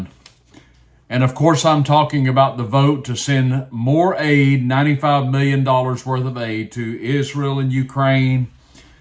And of course, I'm talking about the vote to send more aid, $95 million worth of aid to Israel and Ukraine.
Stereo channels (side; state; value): both; identical; correlation 1.00